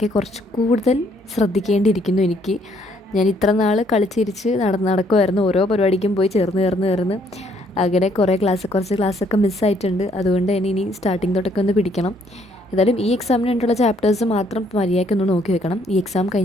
കുറച്ച് കൂടുതൽ ശ്രദ്ധിക്കേണ്ടിയിരിക്കുന്നു എനിക്ക്. ഞാൻ ഇത്ര നാൾ കളിച്ചിരിച്ച് നടക്കുമായിരുന്നു. ഓരോ പരിപാടിക്കും പോയി ചേർന്ന് അങ്ങനെ കുറച്ച് ക്ലാസ്സൊക്കെ മിസ്സായിട്ടുണ്ട്. അതുകൊണ്ട് തന്നെ ഇനി സ്റ്റാർട്ടിങ് തൊട്ടൊക്കെ ഒന്ന് പിടിക്കണം. ഏതായാലും ഈ എക്സാമിന് വേണ്ടിയുള്ള ചാപ്റ്റേഴ്സ് മാത്രം മര്യാദയ്ക്കൊന്ന് നോക്കി വെക്കണം. ഈ എക്സാം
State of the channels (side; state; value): both; normal; correlation 0.67